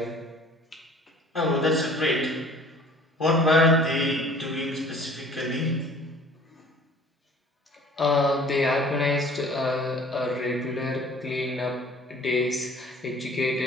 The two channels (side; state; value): both; normal; correlation 0.50